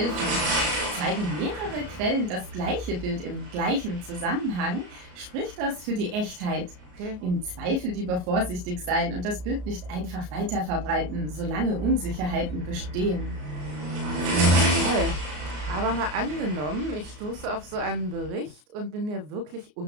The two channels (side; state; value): left; late; 33 ms